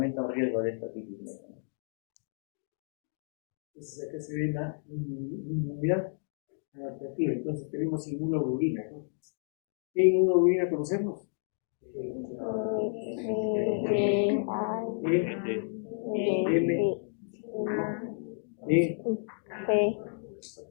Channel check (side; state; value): right; silent; digital silence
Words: el riesgo de esta otitis media. Entonces acá se ve la inmunidad adaptativa. Entonces tenemos inmunoglobulina, ¿no? ¿Qué inmunoglobulina conocemos?